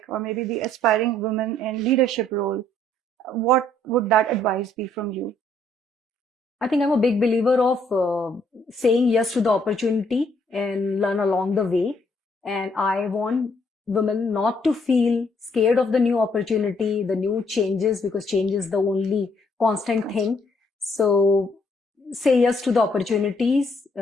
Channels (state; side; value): normal; both; correlation 0.68